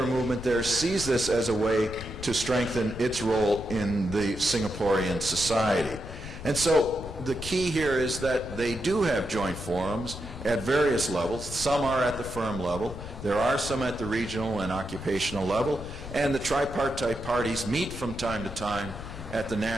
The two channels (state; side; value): noise; left; rumble, 11 dB below the sound